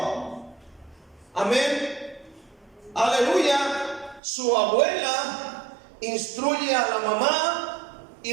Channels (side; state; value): left; drops out; at 4.2 s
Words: Amén, aleluya. Su abuela instruye a la mamá